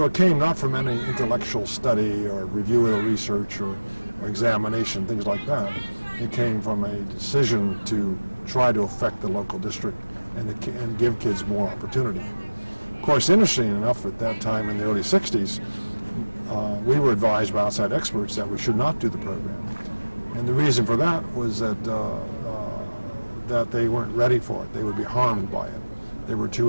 it came not from any intellectual study or review of research or examination, things like that. It came from a decision to try to affect the local district and give kids more opportunity. Of course, interesting enough, at that time in the early 60s, we were advised by outside experts that we should not do the program. And the reason for that was that that they weren't ready for it. They would be harmed by it. They were too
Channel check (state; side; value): inverted; both; correlation -1.00